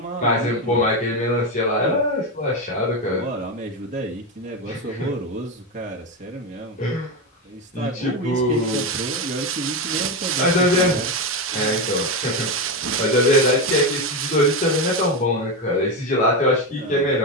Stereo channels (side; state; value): both; normal; correlation 0.13